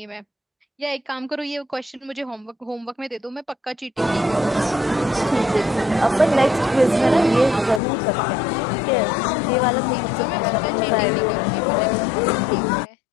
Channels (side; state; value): right; drops out; at 7.8 s